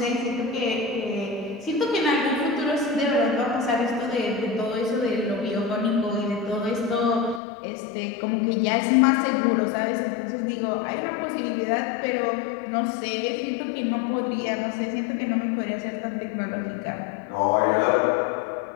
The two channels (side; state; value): right; drops out; at 7.4 s